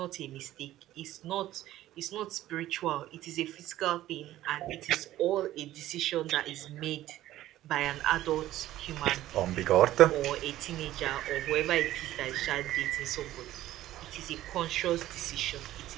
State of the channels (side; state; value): left; quieter; 14.3 dB